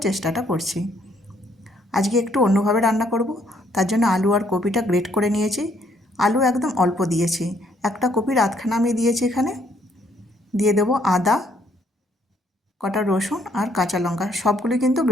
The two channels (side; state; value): both; normal; correlation 0.68